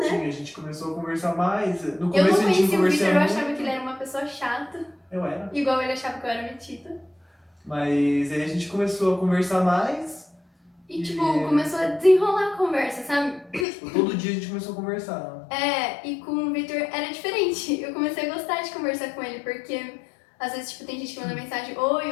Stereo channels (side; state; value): right; drops out; at 13.7 s